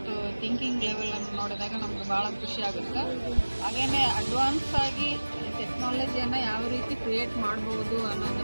ಥಿಂಕಿಂಗ್ ಲೆವೆಲನ್ನು ನೋಡಿದಾಗ ನಮಗೆ ಭಾಳ ಖುಷಿ ಆಗುತ್ತೆ. ಹಾಗೆಯೇ ಅಡ್ವಾನ್ಸ್ ಆಗಿ ಟೆಕ್ನಾಲಜಿಯನ್ನು ಯಾವ ರೀತಿ ಕ್ರಿಯೇಟ್ ಮಾಡಬಹುದು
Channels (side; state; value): both; inverted; correlation -1.00